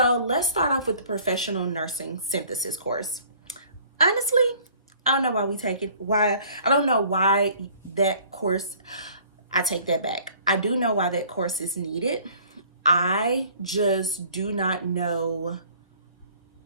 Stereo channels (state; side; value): inverted; both; correlation -0.54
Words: let's start off with the professional nursing synthesis course. Honestly, I don't know why we take it. I don't know why that course, I take that back. I do know why that course is needed. I just do not know.